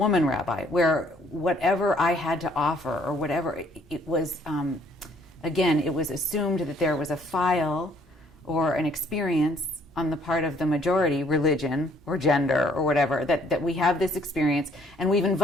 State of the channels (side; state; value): both; normal; correlation 0.63